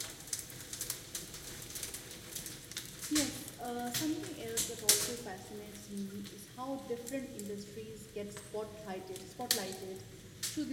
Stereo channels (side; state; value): both; identical; correlation 1.00